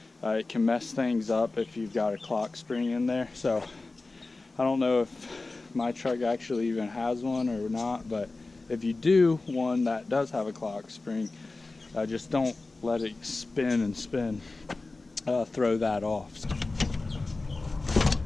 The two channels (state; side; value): quieter; right; 3.4 dB